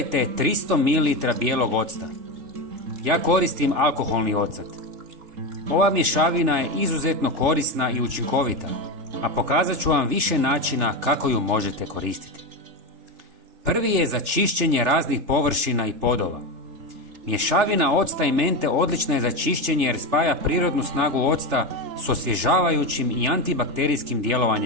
300 ml bijelog octa. Ja koristim alkoholni ocat. Ova mješavina je izuzetno korisna i učinkovita, a pokazat ću vam više načina kako ju možete koristiti. Prvi je za čišćenje raznih površina i podova. Mješavina octa i mente odlična je za čišćenje jer spaja prirodnu snagu octa s osvježavajućim i antibakterijskim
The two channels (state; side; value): late; left; 3.4 ms